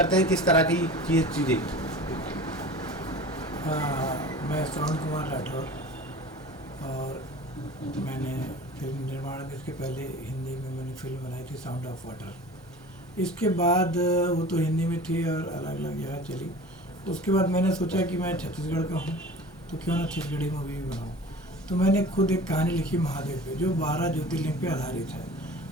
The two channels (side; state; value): both; normal; correlation 0.39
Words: हैं किस तरह की ये चीज़ें। मैं श्रवण कुमार राठौर और मैंने फिल्म निर्माण में इसके पहले हिंदी में मैंने फिल्म बनाई थी साउंड ऑफ वाटर। इसके बाद वो तो हिंदी में थी और अलग अलग जगह चली। उसके बाद मैंने सोचा कि मैं छत्तीसगढ़ का हूँ तो क्यों ना छत्तीसगढ़ी मूवी भी बनाऊँ। तो मैंने खुद एक कहानी लिखी महादेव पे, जो 12 ज्योतिर्लिंग पे आधारित है।